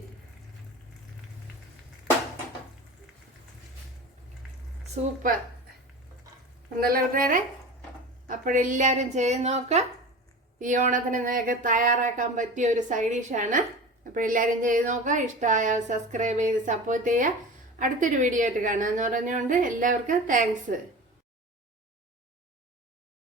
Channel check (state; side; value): normal; both; correlation 0.33